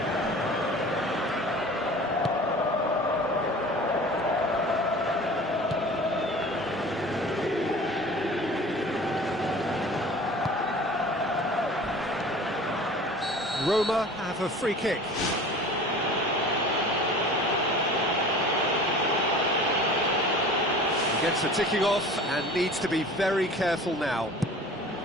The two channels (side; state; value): both; normal; correlation 0.42